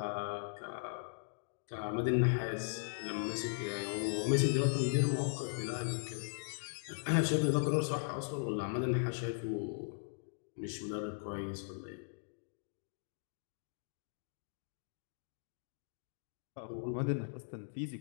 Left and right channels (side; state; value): right; silent; digital silence